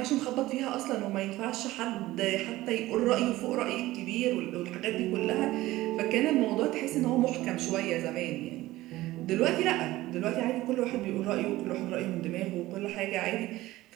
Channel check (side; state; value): left; quieter; 17.2 dB